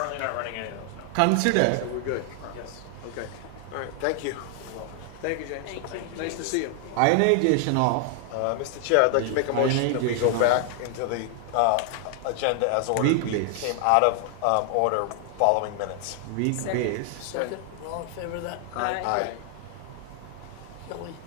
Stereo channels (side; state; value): both; different; correlation 0.00